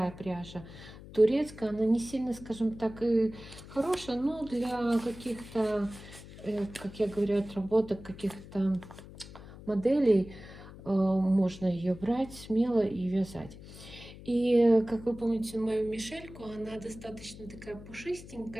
пряжа, турецкая. Она не сильно, скажем так, и хорошая, но для каких-то, как я говорю, отработок каких-то моделей можно ее брать смело и вязать. И, как вы помните, мою Мишельку, она достаточно такая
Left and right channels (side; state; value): left; noise; hum, 16 dB below the sound